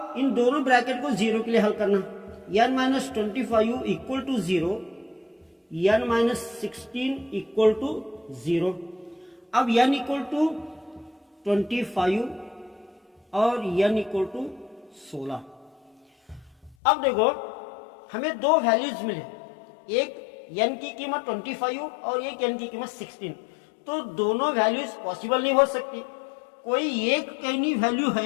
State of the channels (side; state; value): right; drops out; at 16.8 s